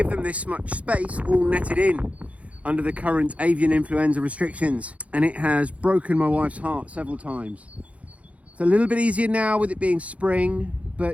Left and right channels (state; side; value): late; left; 0.065 ms